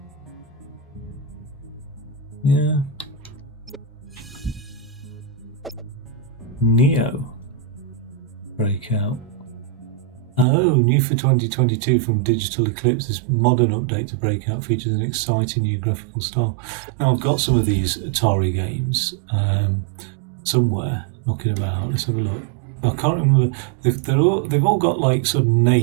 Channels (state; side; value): drops out; left; at 10.5 s